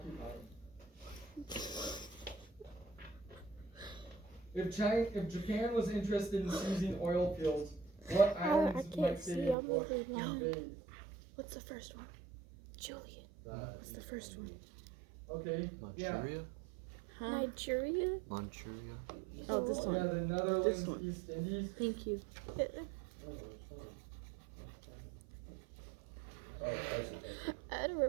If Japan was interested in seizing oil fields, what I islands can't might see, they I'm over blind. invade? What's the first one? Julian. What's the first one? Okay. Manchuria? Huh? Nigeria? Manchuria? Oh, this Yeah, one. the Netherlands, This one. East Indies. Thank you. I don't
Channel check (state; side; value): drops out; left; at 9.6 s